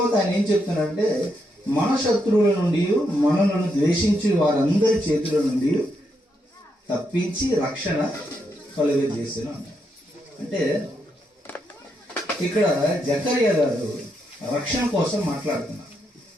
ఆయన ఏం చెప్తున్నారంటే మన శత్రువుల నుండి మనలను ద్వేషించి వారందరి చేతుల నుండి తప్పించి రక్షణ కలుగజేసాను అన్నారు. అంటే ఇక్కడ జకరియా గారు రక్షణ కోసం మాట్లాడుతున్నారు.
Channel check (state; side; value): normal; both; correlation 0.80